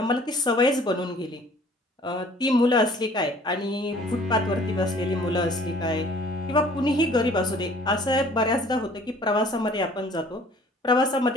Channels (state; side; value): normal; both; correlation 0.53